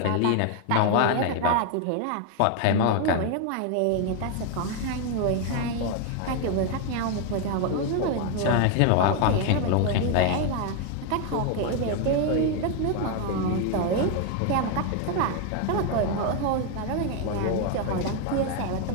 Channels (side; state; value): both; different; correlation 0.01